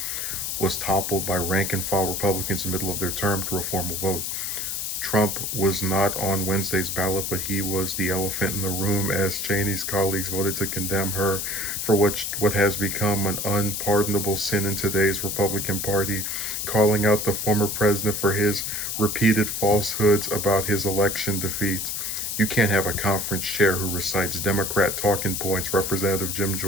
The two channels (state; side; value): noise; left; hiss, 3 dB below the sound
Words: was toppled by rank and file Republicans in the middle of their term through a formal vote. Trump was not on Wednesday's ballot, but he was the elephant in the room as Cheney's colleagues voted to condemn her for what has become an unpardonable sin in today's Republican Party, calling out the former president for his repeated falsehoods about his election defeat. You can't have a conference chair who recites Democrat talking points. Representative Jim